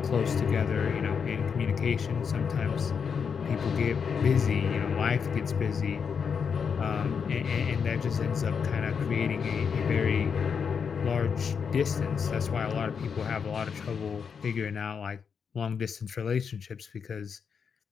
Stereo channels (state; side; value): quieter; right; 6.4 dB